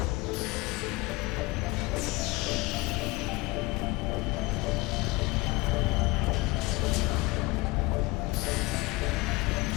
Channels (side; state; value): right; quieter; 22.7 dB